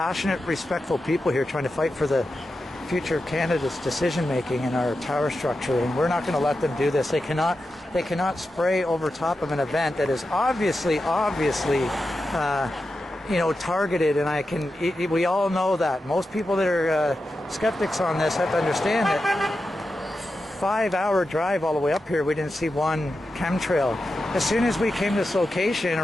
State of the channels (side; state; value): both; normal; correlation 0.90